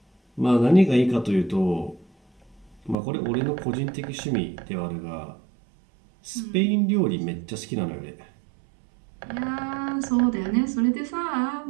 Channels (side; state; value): left; drops out; at 3.0 s